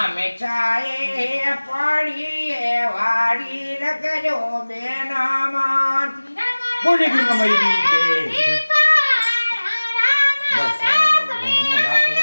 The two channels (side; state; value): both; inverted; correlation -1.00